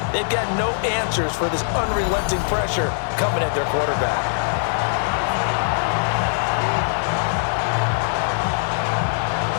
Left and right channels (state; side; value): silent; right; digital silence